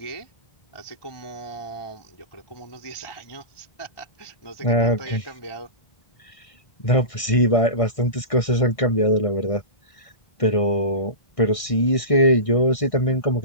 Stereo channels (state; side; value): late; right; 1.6 ms